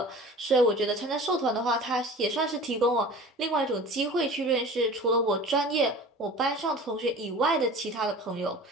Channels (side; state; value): both; normal; correlation 0.40